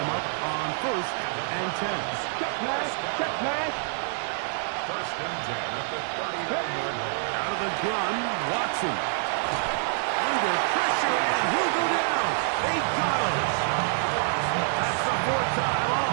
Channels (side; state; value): left; silent; digital silence